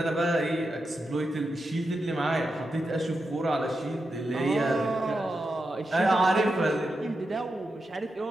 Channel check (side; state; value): both; normal; correlation 0.88